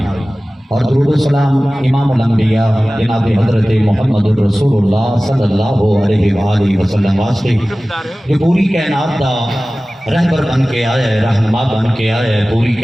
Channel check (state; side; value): normal; both; correlation 0.97